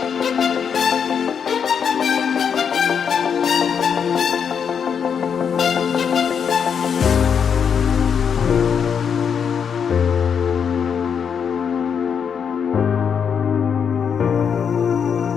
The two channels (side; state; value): right; quieter; 7.1 dB